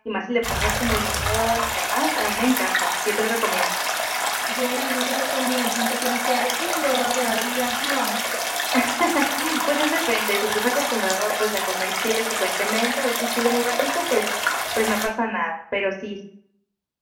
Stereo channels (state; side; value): identical; both; correlation 1.00